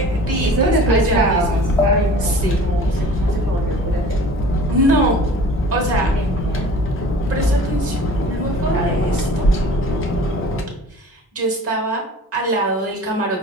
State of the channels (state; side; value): normal; both; correlation 0.44